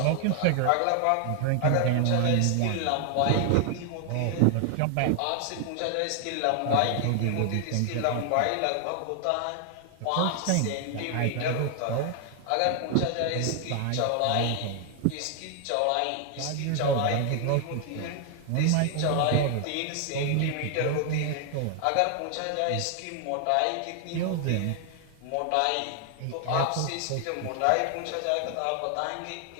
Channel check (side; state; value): both; different; correlation 0.00